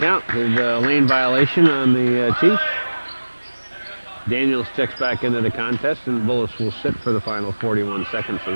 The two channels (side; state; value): both; inverted; correlation -1.00